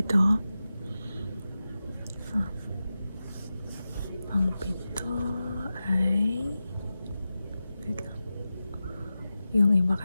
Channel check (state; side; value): inverted; both; correlation -0.94